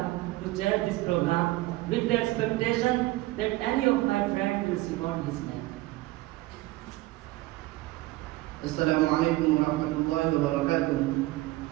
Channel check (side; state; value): left; quieter; 18.8 dB